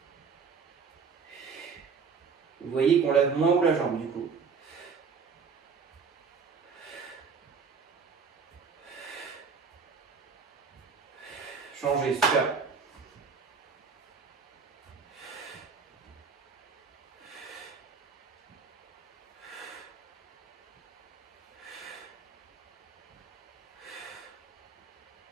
Vous voyez qu'on lève moins haut la jambe du coup. Changez, super.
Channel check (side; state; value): left; quieter; 5.6 dB